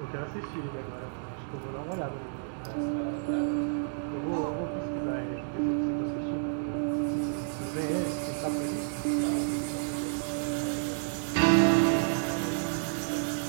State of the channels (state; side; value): silent; left; digital silence